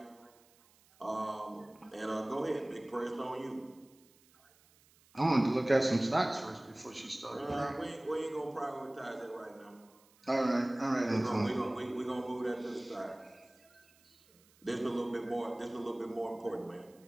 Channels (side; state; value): right; noise; hiss, 29 dB below the sound